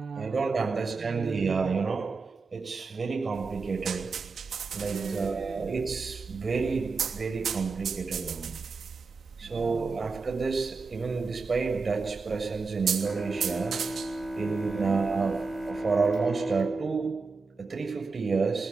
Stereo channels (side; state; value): left; quieter; 4.4 dB